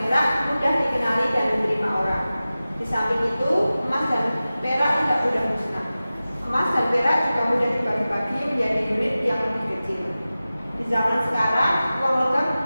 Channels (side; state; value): both; inverted; correlation -0.96